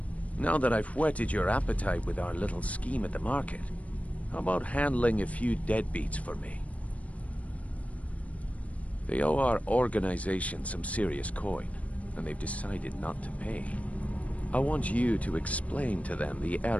now that I've whetted your appetite with our little scheme at the market, how about handling a few deadbeats for me? They owe our organization some serious coin, and they've decided not to pay. I want you to explain to them the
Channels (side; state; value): right; late; 0.067 ms